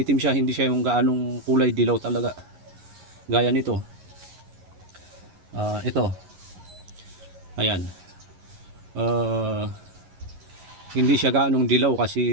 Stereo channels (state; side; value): late; left; 11 ms